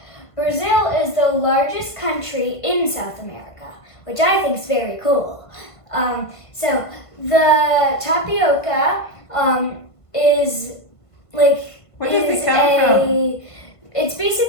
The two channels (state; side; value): late; right; 1.5 ms